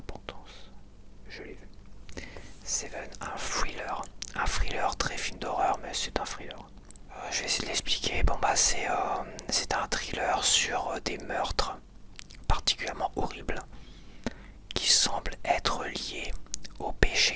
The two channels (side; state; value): both; identical; correlation 1.00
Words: Je l'ai vu. Seven, un thriller très film d'horreur, mais c'est un thriller. Je vais essayer de l'expliquer. Bon bah c'est un thriller sur des meurtres particulièrement horribles qui semblent être liés aux